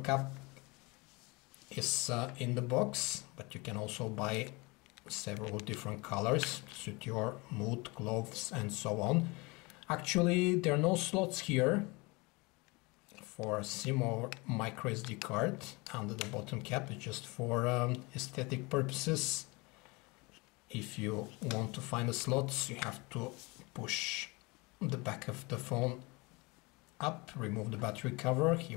is in the box, but you can also buy several different colors to suit your mood, clothes, and so on. Actually, there are no slots here for a SIM or micro SD card under the bottom cap. It's just for aesthetic purposes. If you want to find the slots, you have to push the back of the phone up, remove the battery cover.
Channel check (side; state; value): right; quieter; 26.1 dB